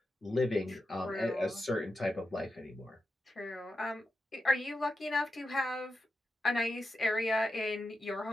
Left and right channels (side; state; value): both; normal; correlation 0.89